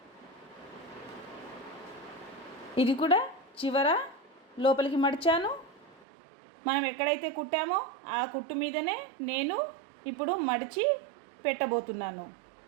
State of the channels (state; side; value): drops out; left; at 6.1 s